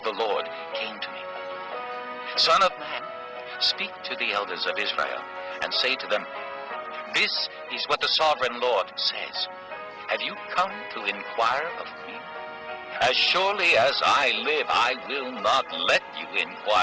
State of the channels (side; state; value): both; identical; correlation 1.00